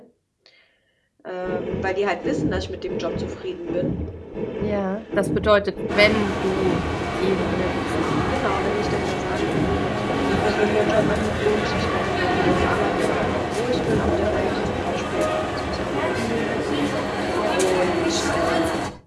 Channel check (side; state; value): both; identical; correlation 1.00